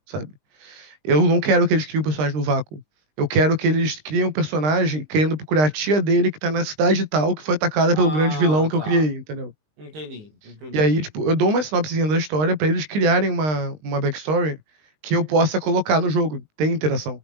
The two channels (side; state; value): left; late; 20 ms